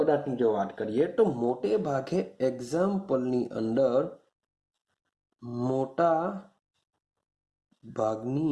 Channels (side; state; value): both; identical; correlation 1.00